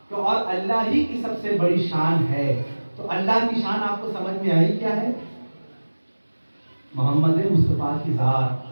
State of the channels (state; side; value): inverted; both; correlation -1.00